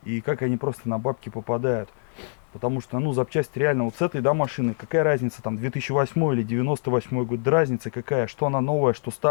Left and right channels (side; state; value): right; silent; digital silence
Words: И как они просто на бабки попадают. Потому что, ну, запчасти реально вот с этой, да, машины, какая разница, там, 2008 или 98 год, да разница какая, что она новая, что